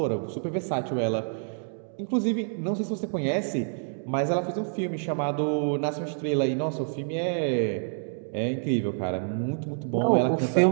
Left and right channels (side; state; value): left; silent; digital silence